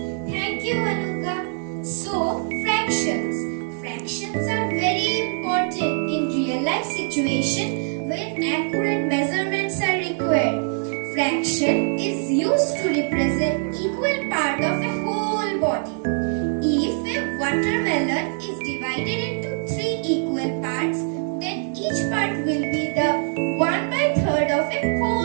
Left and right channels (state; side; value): silent; left; 56 dB below the other